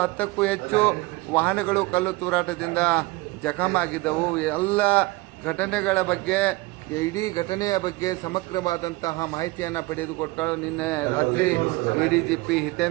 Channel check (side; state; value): left; quieter; 21.7 dB